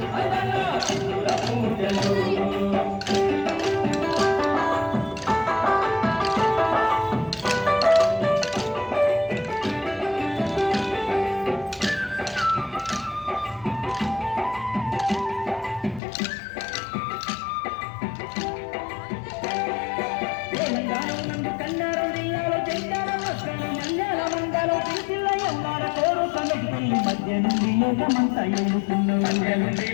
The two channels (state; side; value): drops out; right; at 16.0 s